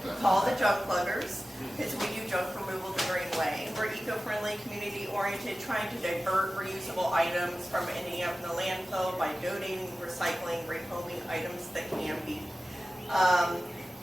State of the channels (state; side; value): normal; both; correlation 0.95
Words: Call the Junk Pluggers, because we do junk removal the green way. We're eco-friendly, community-oriented, trying to divert reusable items from ending up in the landfill by donating, recycling, rehoming items that can be.